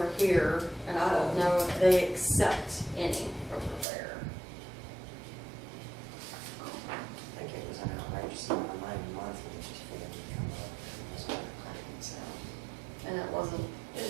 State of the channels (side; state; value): left; drops out; at 3.9 s